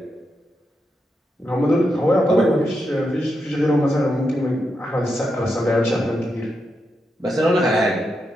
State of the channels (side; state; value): both; normal; correlation 0.85